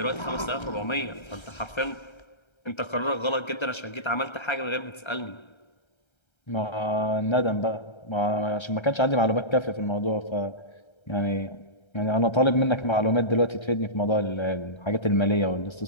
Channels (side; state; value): right; late; 1.3 ms